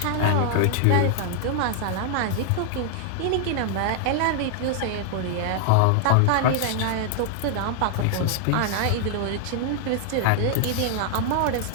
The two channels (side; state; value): both; different; correlation 0.00